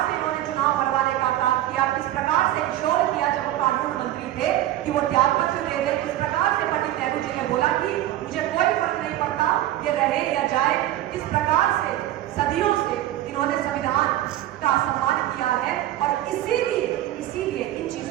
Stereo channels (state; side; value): quieter; left; 13.8 dB